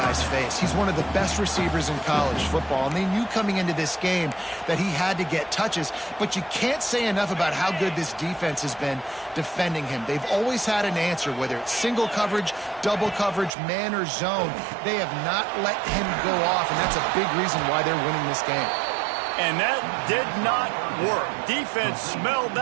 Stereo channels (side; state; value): left; drops out; at 13.5 s